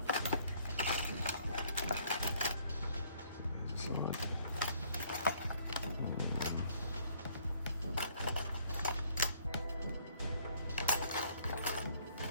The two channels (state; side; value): inverted; both; correlation -0.63